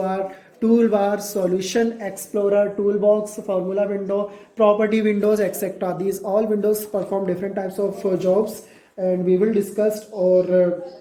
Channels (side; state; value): both; identical; correlation 1.00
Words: toolbar, solution explorer, toolbox, formula window, property windows, etc. These all windows perform different types of jobs, and we will discuss or